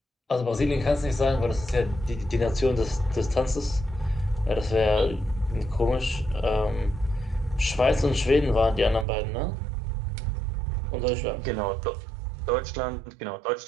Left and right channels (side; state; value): left; drops out; at 9.1 s